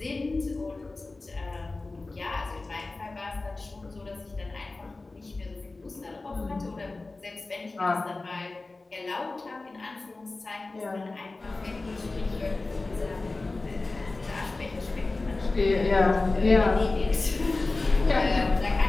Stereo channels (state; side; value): quieter; right; 3.3 dB